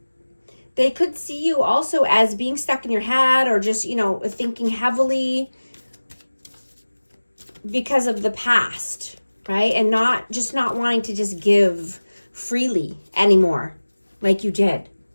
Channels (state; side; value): inverted; both; correlation -1.00